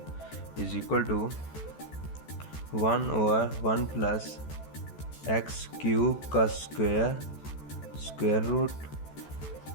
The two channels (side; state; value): right; late; 14 ms